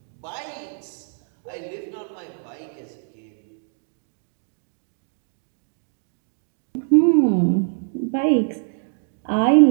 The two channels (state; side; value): silent; left; 62 dB below the other